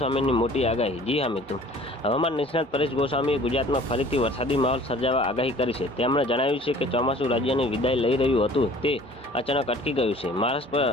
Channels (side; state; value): both; normal; correlation 0.50